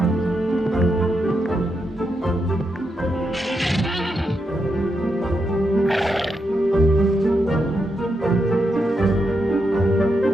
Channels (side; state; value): both; normal; correlation 0.83